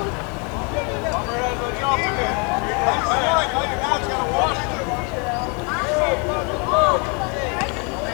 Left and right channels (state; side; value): quieter; right; 34.1 dB